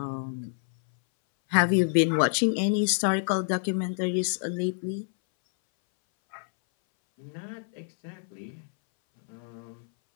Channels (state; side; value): silent; right; 60 dB below the other